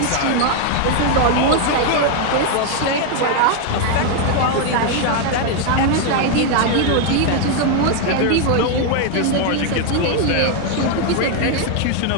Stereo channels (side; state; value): both; different; correlation 0.01